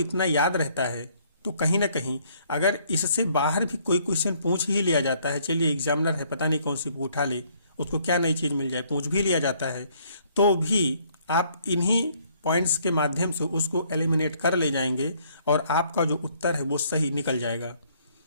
याद रहता है तो कहीं ना कहीं अगर इससे बाहर भी कोई क्वेश्चन पूछ ही लिया जाता है, चलिए एग्जामिनर है, पता नहीं कौन सी बुक उठा ले, उसको क्या नई चीज़ मिल जाए, पूछ भी लिया जाता है, तो भी आप इन्हीं पॉइंट्स के माध्यम से उसको एलिमिनेट कर ले जाएंगे और आपका जो उत्तर है वो सही निकल जाएगा।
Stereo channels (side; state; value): both; inverted; correlation -0.64